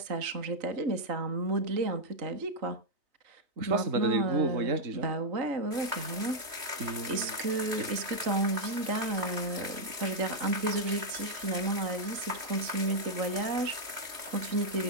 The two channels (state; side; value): late; left; 3.1 ms